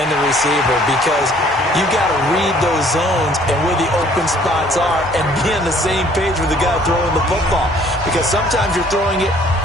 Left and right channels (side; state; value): both; normal; correlation 0.58